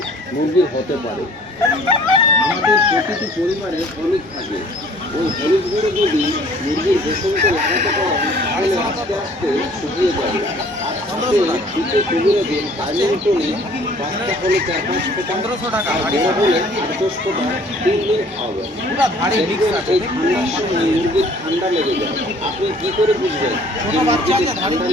মুরগির হতে পারে। আমাদের প্রতিটি পরিবারে হলুদ থাকে। ওই হলুদগুলো যদি মুরগির বসন্ত লাগাতে পারেন তাহলে আস্তে আস্তে শুকিয়ে যাবে। আর সাথে শীতে কবিরাজের কাজের টনে বাচ্চা হলে 4-5 ফোঁটা, 1500 টাকা। আর বড় হলে 8-10 ফোঁটা 3 দিন খাওয়াবেন। এই ঠান্ডার সময় মুরগির ঠান্ডা লেগে যায়। আপনি কি করে বুঝবেন যে মুরগিতে ঠান্ডা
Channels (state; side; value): normal; both; correlation 0.54